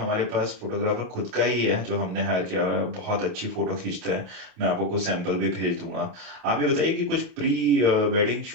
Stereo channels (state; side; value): late; left; 28 ms